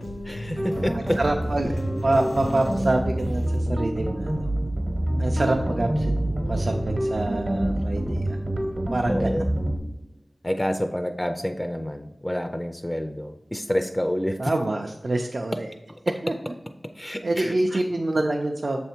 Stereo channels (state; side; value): normal; both; correlation 0.98